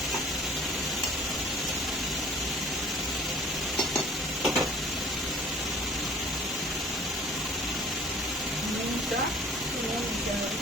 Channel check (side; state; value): both; normal; correlation 0.49